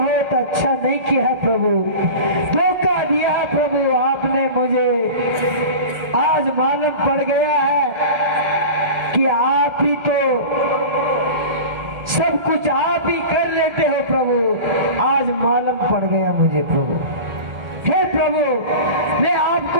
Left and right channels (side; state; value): left; late; 1.4 ms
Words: अच्छा नहीं किया है प्रभु, धोखा दिया है प्रभु आपने मुझे। आज मालूम पड़ गया है कि आप ही तो सब कुछ आप ही कर लेते हो प्रभु। आज मालूम पड़ गया मुझे प्रभु। हे प्रभु, मैं